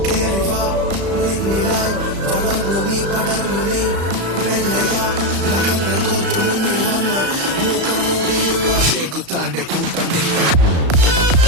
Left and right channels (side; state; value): left; late; 35 ms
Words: കേറിവാ നിന്നിലായി വളർന്നു നീ പടർന്നു നീ മെല്ലയാ നഖങ്ങൾ കോർത്തു മുന്നിൽ വന്ന് മുഖം മൂടിയുള്ള ശേഖുത്താന്റെ കൂട്ടം നീ